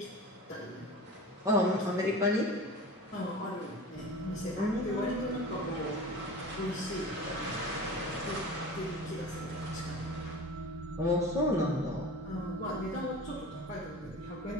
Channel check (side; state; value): both; normal; correlation 0.36